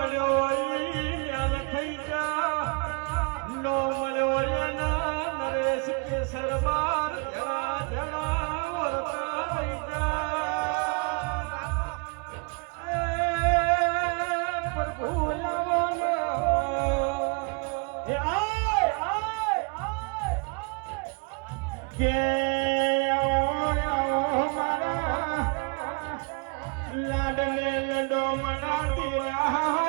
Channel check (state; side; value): quieter; left; 33.4 dB